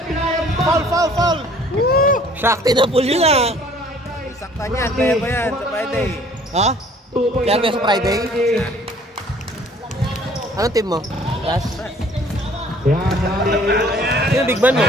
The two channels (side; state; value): both; normal; correlation 0.55